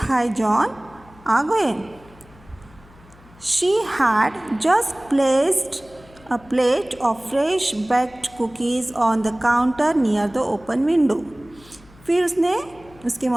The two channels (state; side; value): noise; left; hum, 25 dB below the sound